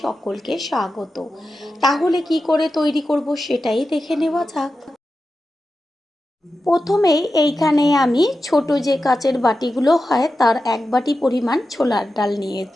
সকলকে স্বাগত। তাহলে কি করে তৈরি করব সেটাই দেখে নেওয়া যাক। প্রথমেই এইখানে আমি ছোট যে কাচের বাটিগুলো হয় তার 1 বাটি পরিমাণ ছোলার ডাল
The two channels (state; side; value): normal; both; correlation 0.92